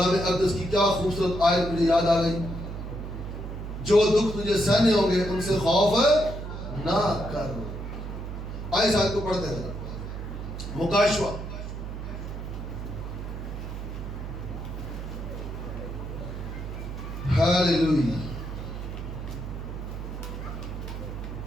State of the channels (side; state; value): right; noise; hum, 7 dB below the sound